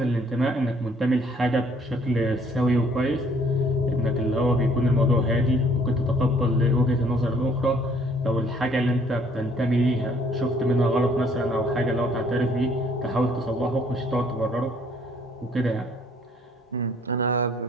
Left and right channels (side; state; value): both; normal; correlation 0.61